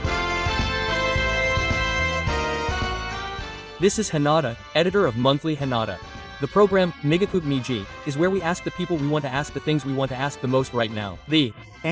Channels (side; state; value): both; identical; correlation 1.00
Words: This is Hanada, editor of Monthly Hanada. The program, Migakup Miji, is where we ask the people we want to ask the things we want to ask the most right now. The